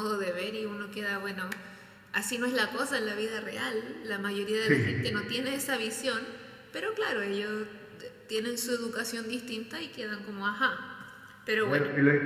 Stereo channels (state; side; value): identical; both; correlation 1.00